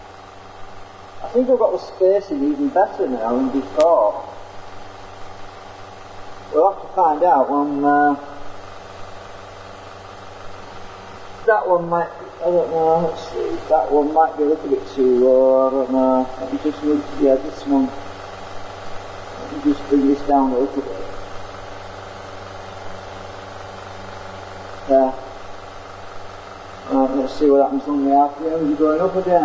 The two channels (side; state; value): both; identical; correlation 1.00